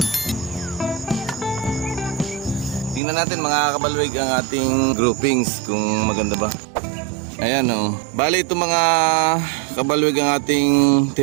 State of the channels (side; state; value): left; drops out; at 3.0 s